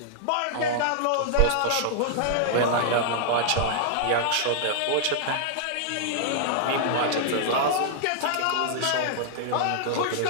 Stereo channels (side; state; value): both; different; correlation -0.01